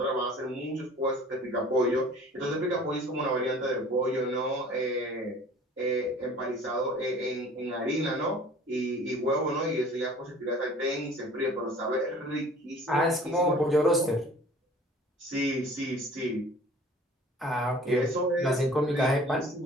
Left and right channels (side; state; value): both; normal; correlation 0.48